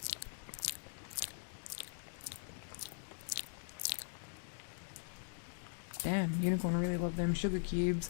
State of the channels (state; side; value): silent; right; digital silence